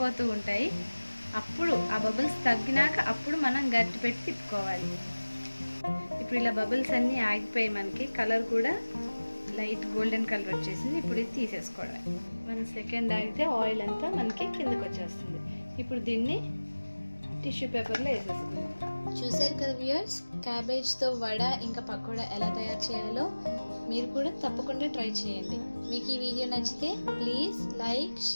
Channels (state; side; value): inverted; both; correlation -1.00